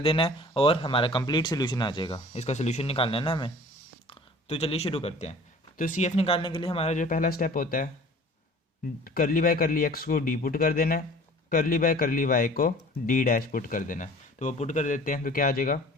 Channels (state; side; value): normal; both; correlation 0.47